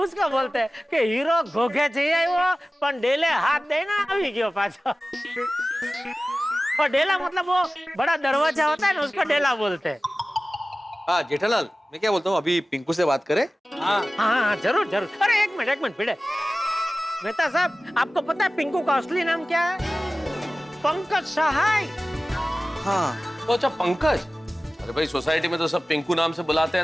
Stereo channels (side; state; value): both; normal; correlation 0.96